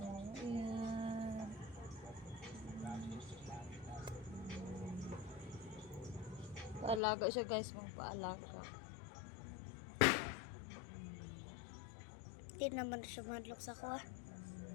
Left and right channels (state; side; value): drops out; right; at 7.0 s